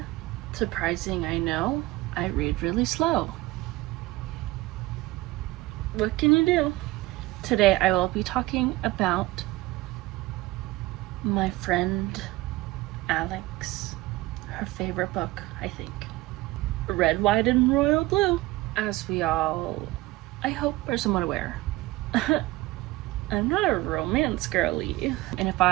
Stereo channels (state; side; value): quieter; left; 19.2 dB